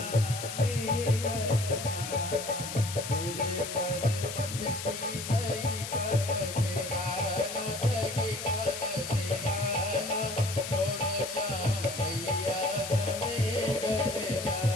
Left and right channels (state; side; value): noise; left; hiss, 7 dB below the sound